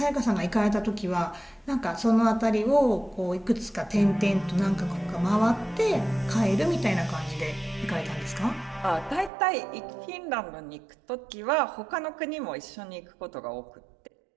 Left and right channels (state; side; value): drops out; left; at 9.3 s